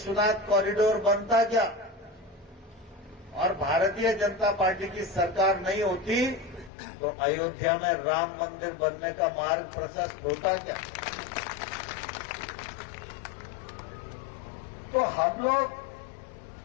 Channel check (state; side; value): drops out; right; at 6.7 s